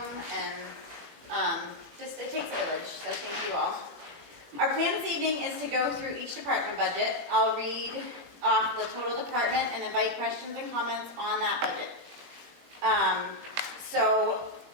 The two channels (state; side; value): late; left; 20 ms